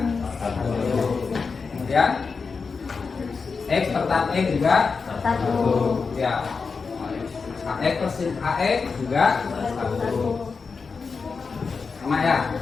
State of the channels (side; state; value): right; quieter; 4.9 dB